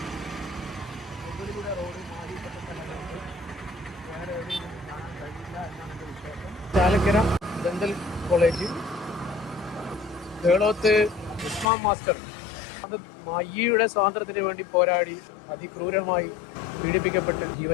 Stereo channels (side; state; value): right; drops out; at 11.7 s